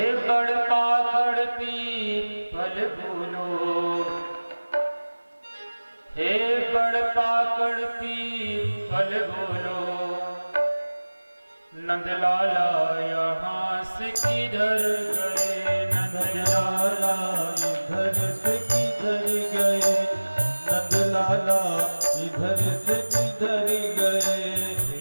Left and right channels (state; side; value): inverted; both; correlation -1.00